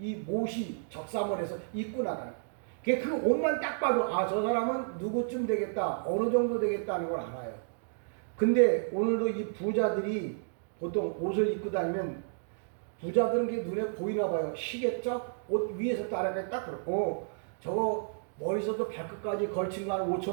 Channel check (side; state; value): left; silent; digital silence